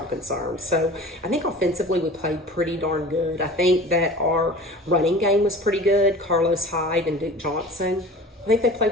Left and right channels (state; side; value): normal; both; correlation 0.40